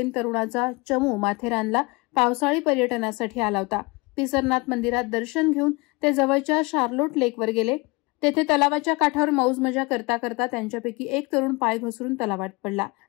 तरुणाचा चमू माथेरानला पावसाळी पर्यटनासाठी आला होता। पिसरनाथ मंदिरात दर्शन घेऊन ते जवळच्या शार्लोट लेकवर गेले। तेथे तलावाच्या काठावर मौज मजा करता करता त्यांच्यापैकी एक तरुण पाय घसरून तलावात पडला।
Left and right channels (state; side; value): quieter; right; 26.0 dB